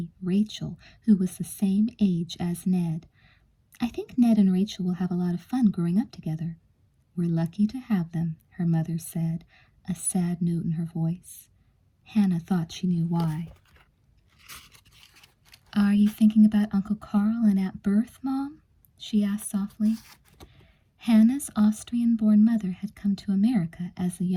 Rachel, who was the same age as Ned. I think Ned and Rachel will have a lot of fun growing up together. We're lucky to have them, her mother said, a sad note in her voice. Hannah thought she knew why. Are you thinking about Uncle Carl and Aunt Berthe, Mom? She asked softly. Hannah's Austrian-born mother had come to America as a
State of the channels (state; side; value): identical; both; correlation 1.00